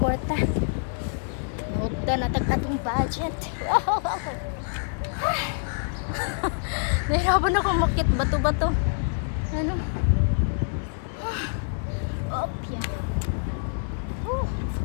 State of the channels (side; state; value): right; silent; digital silence